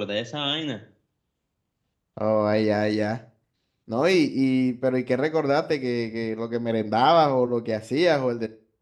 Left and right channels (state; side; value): identical; both; correlation 1.00